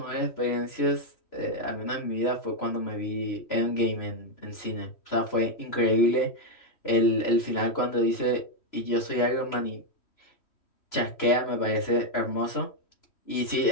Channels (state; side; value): late; right; 2.9 ms